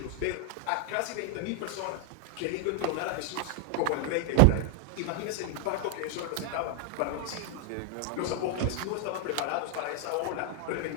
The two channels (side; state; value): both; different; correlation 0.00